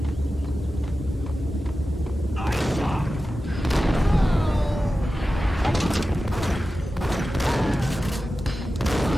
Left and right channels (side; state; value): both; normal; correlation 0.94